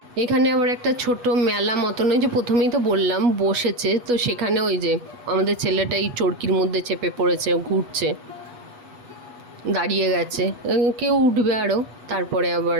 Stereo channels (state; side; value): late; left; 8.2 ms